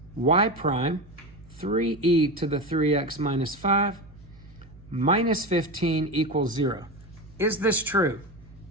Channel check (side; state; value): right; noise; hum, 23 dB below the sound